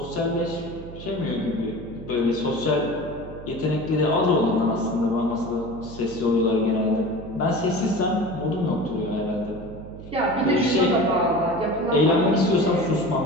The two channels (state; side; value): noise; right; hum, 14 dB below the sound